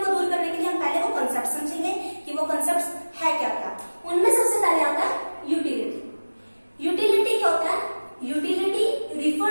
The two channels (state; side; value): inverted; both; correlation -1.00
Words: दूर करने के लिए हम पहले वो कंसेप्ट समझेंगे कि वो कंसेप्ट है क्या क्या। उनमें सबसे पहले आता है यूटिलिटी। यूटिलिटी क्या होता है? Utility